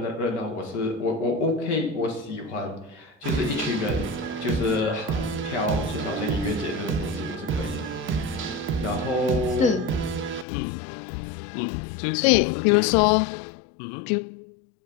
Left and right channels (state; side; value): drops out; right; at 10.5 s